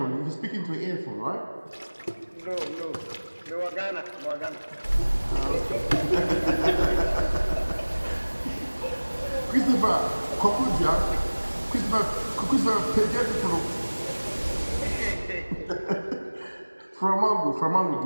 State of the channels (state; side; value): inverted; both; correlation -1.00